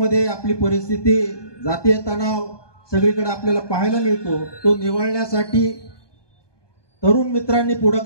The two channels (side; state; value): right; late; 1.2 ms